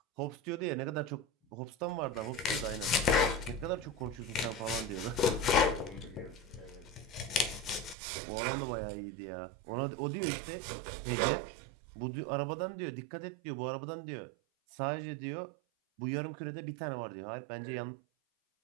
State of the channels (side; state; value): left; drops out; at 8.0 s